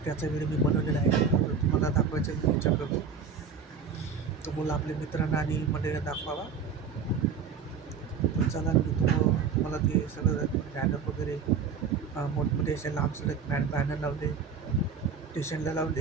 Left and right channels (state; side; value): quieter; left; 6.1 dB